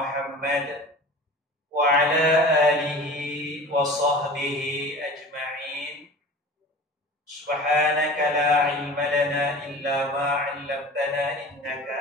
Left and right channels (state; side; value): normal; both; correlation 0.38